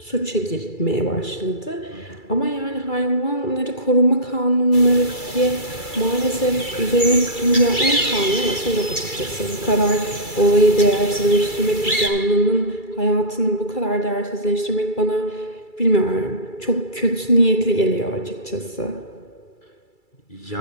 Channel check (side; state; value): right; late; 2.3 ms